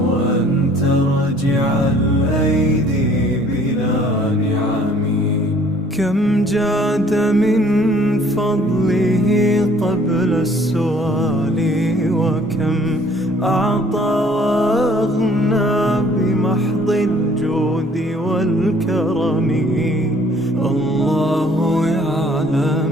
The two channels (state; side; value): normal; both; correlation 0.57